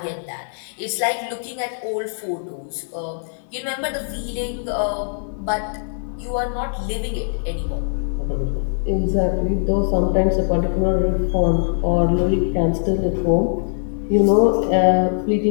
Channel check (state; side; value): silent; right; digital silence